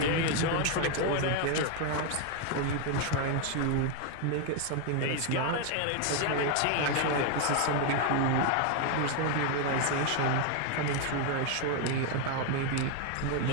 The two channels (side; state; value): both; different; correlation 0.01